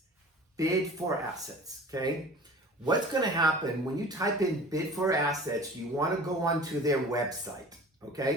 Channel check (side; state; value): both; normal; correlation 0.42